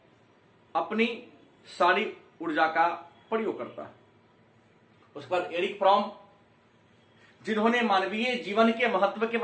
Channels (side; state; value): both; identical; correlation 1.00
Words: अपनी सारी ऊर्जा का प्रयोग करता है। उसके बाद एरिक फ्रॉम, जिन्होंने मानवीय जीवन के महत्व के